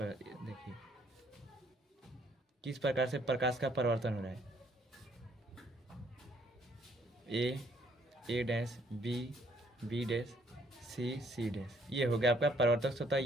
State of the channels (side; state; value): both; normal; correlation 0.66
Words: देखिए किस प्रकार से प्रकाश का परिवर्तन हो रहा है। A dash, B dash, C dash, ये हो गया आपका परावर्तक सतह,